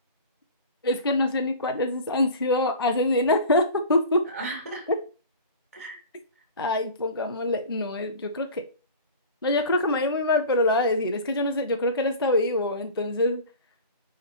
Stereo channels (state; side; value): inverted; both; correlation -0.37